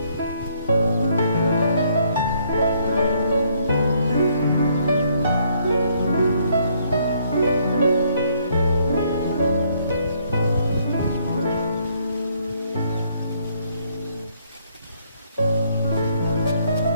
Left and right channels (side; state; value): both; inverted; correlation -0.68